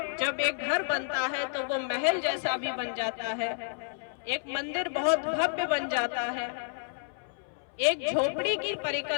जब एक घर बनता है तो वो महल जैसा भी बन जाता है, एक मंदिर बहुत भव्य बन जाता है, एक झोपड़ी की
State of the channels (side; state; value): right; silent; 58 dB below the other